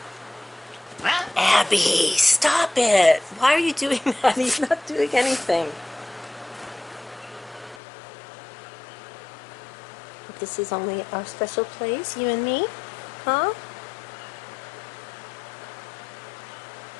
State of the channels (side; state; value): right; drops out; at 7.8 s